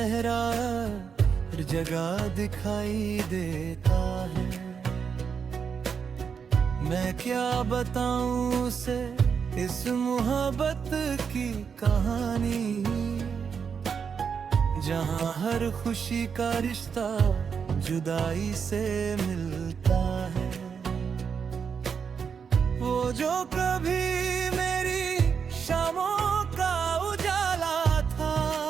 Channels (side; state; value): left; quieter; 6.5 dB